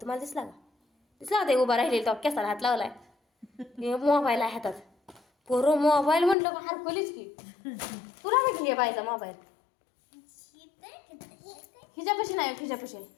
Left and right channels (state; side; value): drops out; right; at 6.4 s